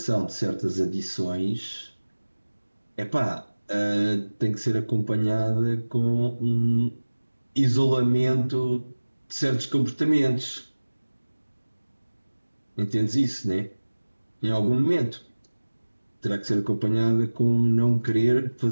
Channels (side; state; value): both; inverted; correlation -1.00